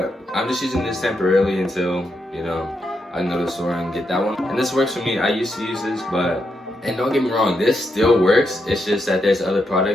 I'm just using this temporarily until, you know, I can go to the store and get that one. And this works for me. I used to use this, but, and don't get me wrong, this still works. It's just that there's other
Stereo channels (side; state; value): both; normal; correlation 0.82